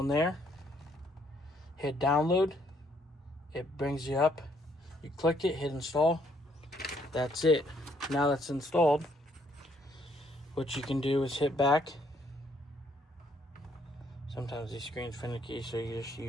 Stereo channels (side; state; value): both; normal; correlation 0.68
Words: there. Hit download. It brings you up. You click it, hit install. That's it. Now that's installed, what you can do is hit back. Sometimes these screens finicky, so you just